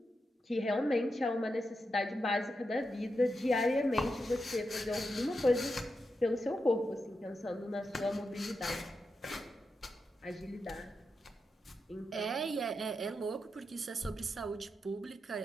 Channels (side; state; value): both; normal; correlation 0.87